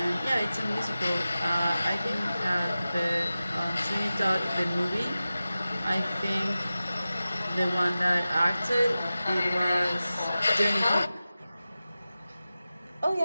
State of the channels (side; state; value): both; inverted; correlation -0.95